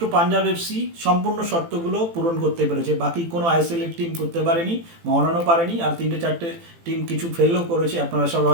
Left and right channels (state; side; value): late; left; 18 ms